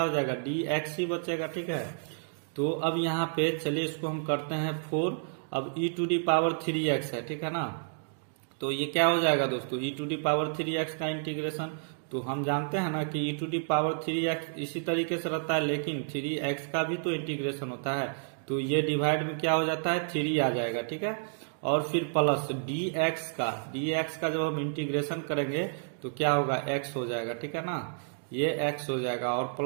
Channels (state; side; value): silent; left; digital silence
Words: हो जाएगा dx ही बचेगा, ठीक है। तो अब यहाँ पे चलिए इसको हम करते हैं 4, अब e⁻³ है, ठीक है ना। तो ये क्या हो जाएगा दोस्तों e⁻³ का इंटीग्रेशन, तो हम जानते हैं ना कि e⁻³ इसी तरीके से रहता है, लेकिन 3x का भी तो इंटीग्रेशन होता है, तो ये डिवाइड में क्या हो जाता है 3 आ जाएगा, ठीक है। और फिर प्लस dx का जब हम इंटीग्रेशन करेंगे तो क्या होगा x हो जाएगा, ठीक है ना, ये x हो जाएगा और